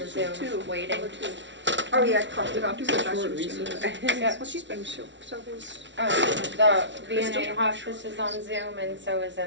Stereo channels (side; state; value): left; late; 0.53 ms